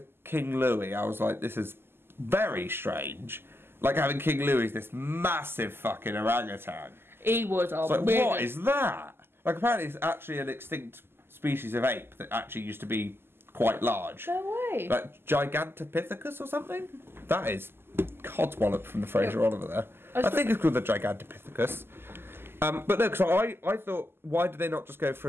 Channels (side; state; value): left; late; 0.11 ms